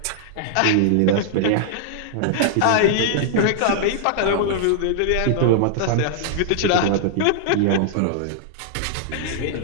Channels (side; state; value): both; different; correlation -0.01